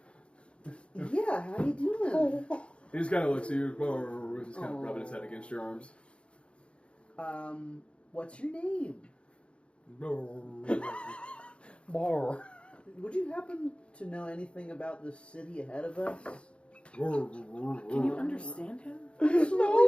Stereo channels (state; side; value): late; right; 0.058 ms